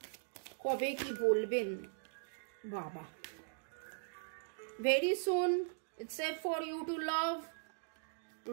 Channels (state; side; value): silent; left; digital silence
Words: কবে কি বলবেন। বাবা, very soon it's safe for you to love,